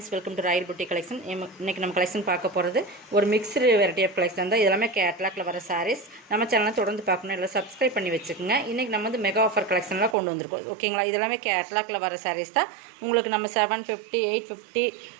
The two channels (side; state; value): left; drops out; at 10.2 s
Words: welcome to Royal Buti collection. இன்றைக்கி நம்ம collection பார்க்க போகிறது ஒரு மிக்ஸ்டு வெரைட்டி ஆஃப் கலெக்ஷன் தான். இதெல்லாமே கேட்லாக்ல வர சாரீஸ். நம்ம சேனலை தொடர்ந்து பார்க்கணும், இல்லை சப்ஸ்கிரைப் பண்ணி வச்சுக்கோங்க. இன்றைக்கி நம்ம வந்து மெகா ஆஃபர் கலெக்ஷன்லாம் கொண்டு வந்திருக்கோம். ஓகேங்களா? இதெல்லாமே கேட்லாக்ல வர சாரீஸ் தான். உங்களுக்கு நம்ம 750, 850,